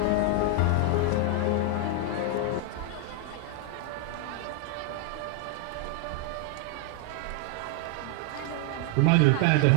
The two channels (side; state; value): both; different; correlation 0.00